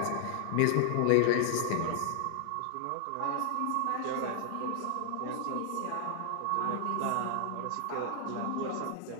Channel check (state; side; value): different; both; correlation 0.00